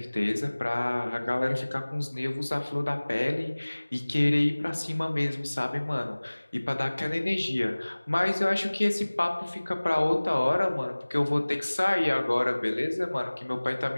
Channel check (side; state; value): both; inverted; correlation -1.00